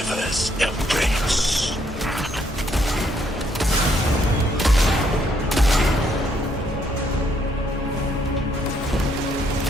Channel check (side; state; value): both; normal; correlation 0.70